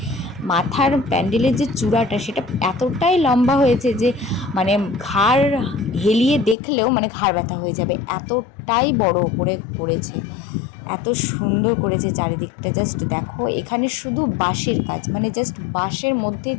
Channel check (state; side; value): drops out; right; at 6.6 s